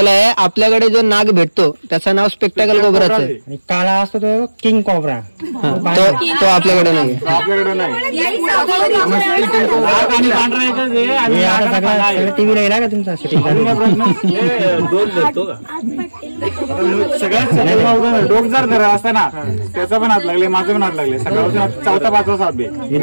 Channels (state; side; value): inverted; both; correlation -1.00